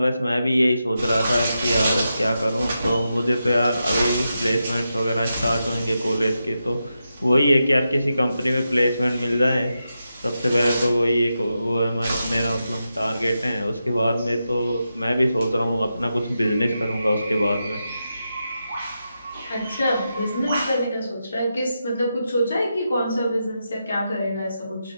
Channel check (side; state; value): both; inverted; correlation -0.88